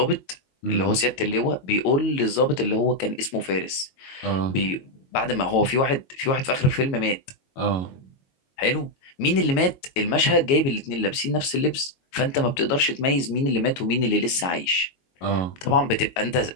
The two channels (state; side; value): late; right; 22 ms